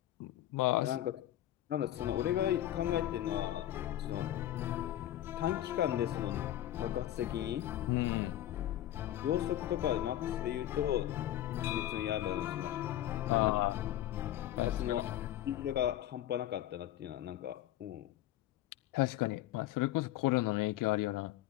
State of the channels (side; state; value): right; quieter; 13.2 dB